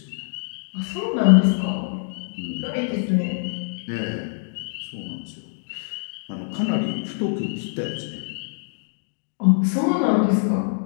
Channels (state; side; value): silent; right; digital silence